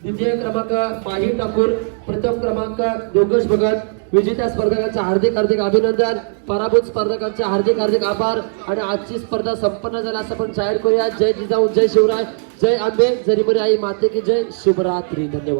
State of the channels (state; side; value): silent; left; digital silence